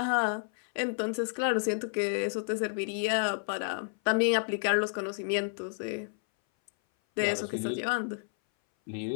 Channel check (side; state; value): right; silent; 57 dB below the other